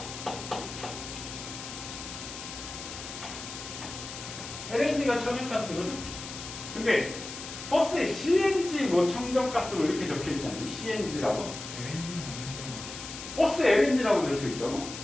LNG가 천연가스거든. 근데 버스에 CNG 뭐 청정가스로 이렇게 적혀 있지 않니? CNG라고? 버스 LNG라고 적혀 있다고?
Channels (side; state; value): left; noise; hiss, 10 dB below the sound